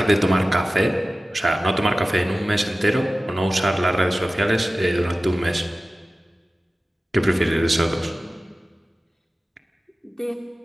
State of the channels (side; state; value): both; normal; correlation 0.96